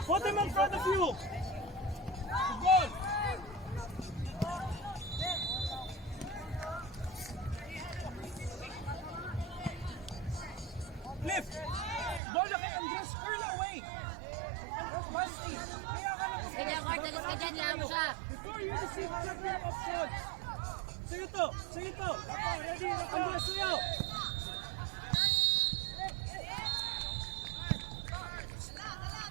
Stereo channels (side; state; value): left; drops out; at 12.2 s